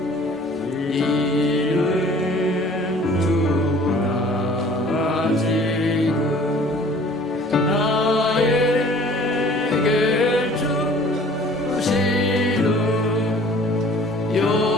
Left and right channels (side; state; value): both; normal; correlation 0.50